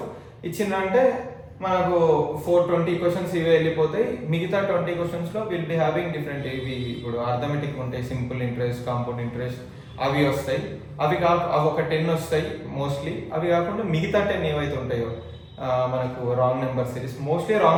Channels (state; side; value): identical; both; correlation 1.00